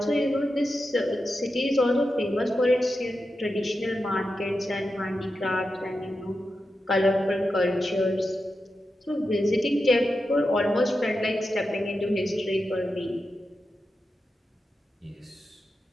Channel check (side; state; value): both; normal; correlation 0.89